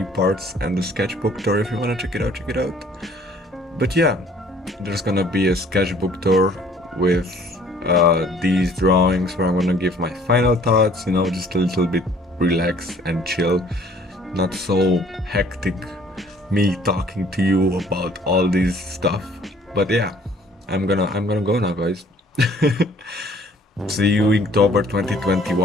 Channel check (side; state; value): both; normal; correlation 0.56